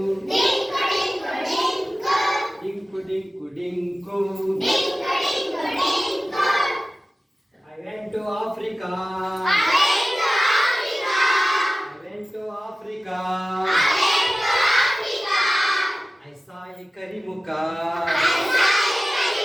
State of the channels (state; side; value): normal; both; correlation 0.96